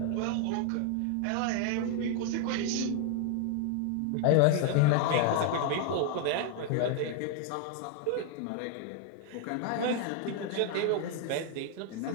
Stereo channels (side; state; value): both; different; correlation 0.00